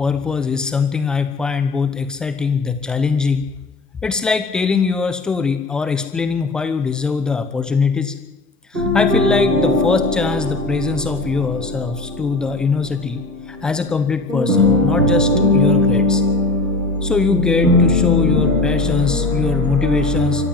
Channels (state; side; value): quieter; right; 3.2 dB